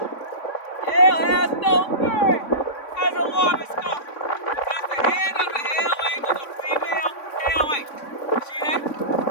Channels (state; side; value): late; right; 3.5 ms